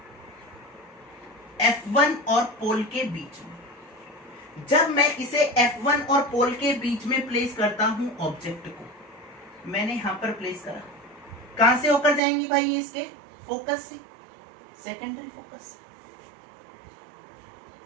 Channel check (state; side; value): drops out; left; at 12.2 s